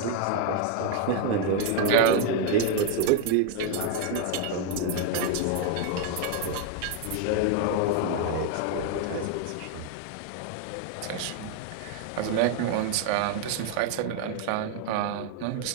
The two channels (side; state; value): both; different; correlation 0.00